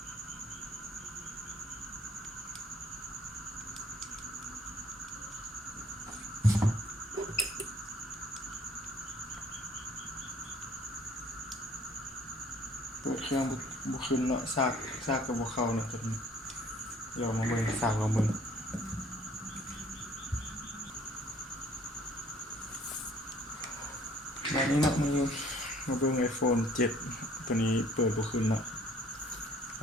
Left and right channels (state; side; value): normal; both; correlation 0.57